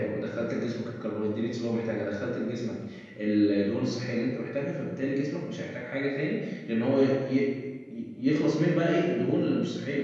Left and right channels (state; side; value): identical; both; correlation 1.00